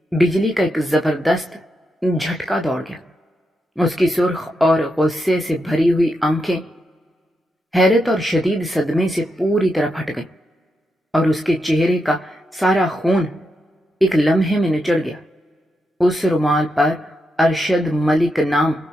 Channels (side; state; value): both; normal; correlation 0.84